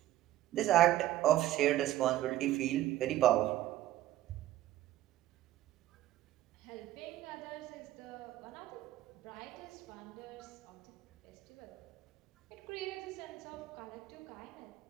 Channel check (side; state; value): left; quieter; 14.3 dB